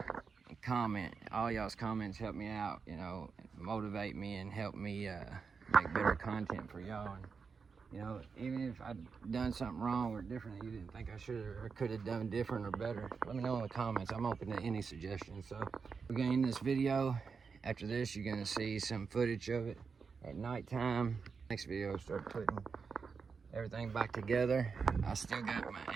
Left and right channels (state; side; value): quieter; left; 5.4 dB